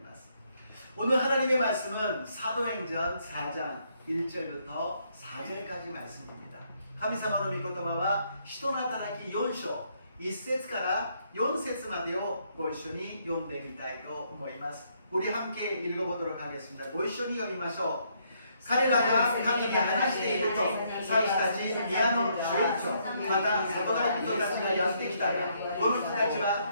ます。 오늘 하나님의 말씀은 사도행전 4장 1절부터 4절까지 말씀입니다. 神様の御言葉は人の働き4章1節から4節までをご一緒に読んでみたいと思います。 우리 함께 읽어보도록 하겠습니다. ご一緒に読みましょう。 彼らが神に話していると、祭司たち、宮の守衛長、また里帰り人たちがやってきたが、この人たちは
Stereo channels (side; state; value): both; inverted; correlation -0.72